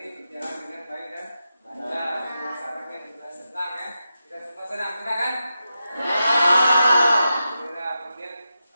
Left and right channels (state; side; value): inverted; both; correlation -0.89